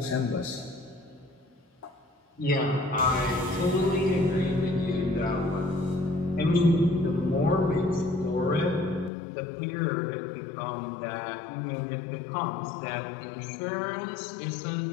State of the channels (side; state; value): right; drops out; at 9.1 s